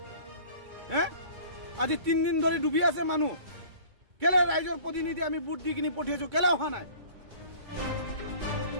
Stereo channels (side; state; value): left; late; 2.3 ms